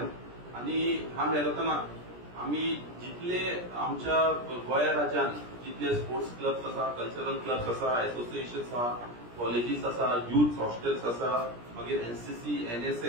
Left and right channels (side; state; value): left; late; 17 ms